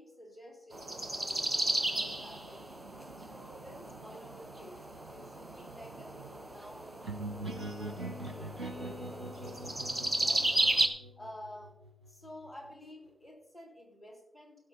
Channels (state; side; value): normal; both; correlation 0.83